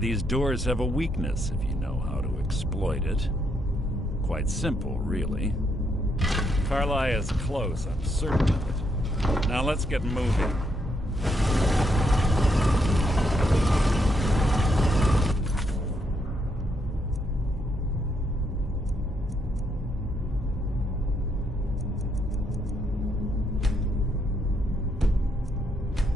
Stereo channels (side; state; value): both; normal; correlation 0.76